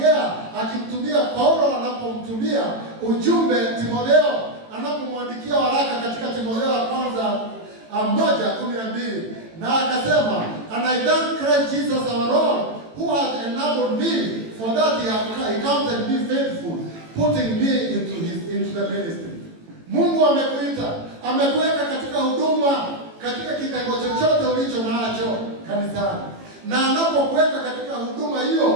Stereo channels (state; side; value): late; left; 18 ms